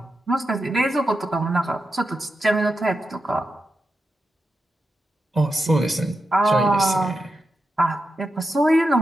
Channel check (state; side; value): normal; both; correlation 0.88